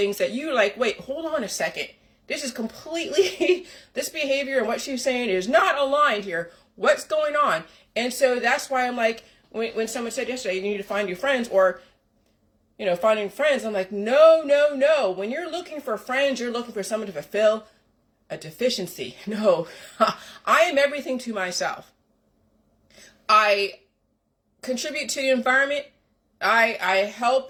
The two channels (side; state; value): both; identical; correlation 1.00